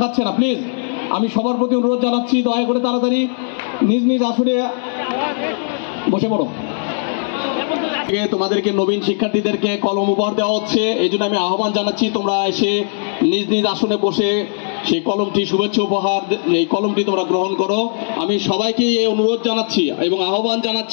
না, প্লিজ আমি সবার প্রতি অনুরোধ জানাচ্ছি, দয়া করে তাড়াতাড়ি নিজ নিজ আসনে বসে পড়ো। তোমাদেরকে নবীন শিক্ষার্থীদেরকে কলম উপহার দেওয়া হচ্ছে, এই জন্য আমি আহ্বান জানাচ্ছি তোমরা এসে নিজ নিজ আসনে বসে সেই কলমটি, শুভেচ্ছা উপহার, এই কলমটি তোমরা গ্রহণ করো। আমি সবাইকে এই অনুরোধ জানাচ্ছি এবং আহ্বান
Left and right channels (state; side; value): silent; right; digital silence